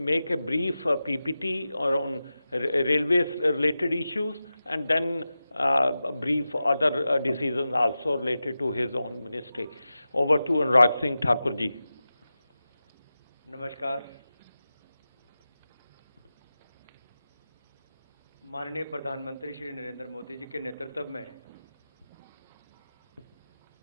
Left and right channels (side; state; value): both; inverted; correlation -0.93